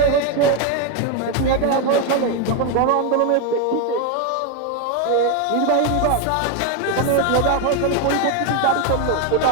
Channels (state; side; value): different; both; correlation 0.01